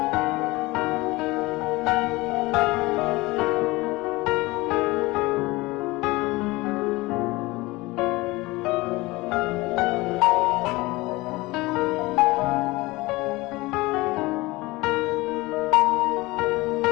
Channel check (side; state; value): right; quieter; 21.5 dB